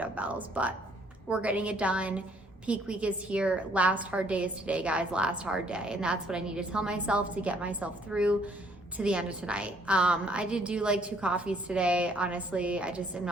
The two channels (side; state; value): both; normal; correlation 0.64